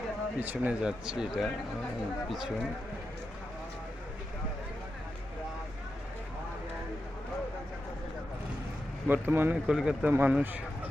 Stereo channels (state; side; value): normal; both; correlation 0.89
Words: পিছনে যাচ্ছি, এটা পিছন। বর্তমানে কলকাতা মানুষ